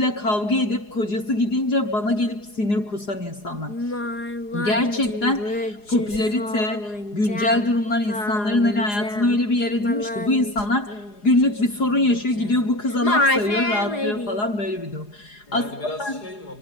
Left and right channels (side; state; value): right; late; 4.8 ms